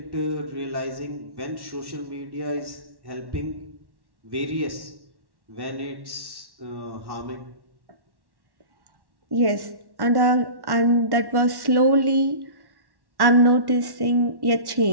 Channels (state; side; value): late; left; 1.1 ms